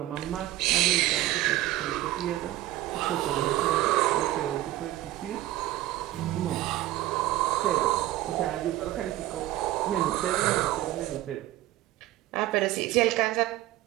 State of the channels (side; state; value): left; quieter; 15.4 dB